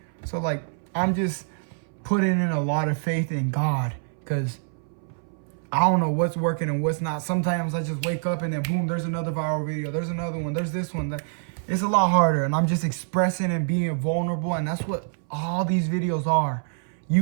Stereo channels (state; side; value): silent; left; 60 dB below the other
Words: So, like, I'm just putting in a lot of faith in God, because I don't know what's working and what's not. Sometimes I just wake up and then boom, there's another viral video. There's another one. There's this one. It's a lot harder. And I'm just expressing and being vulnerable. And that's what all these videos are.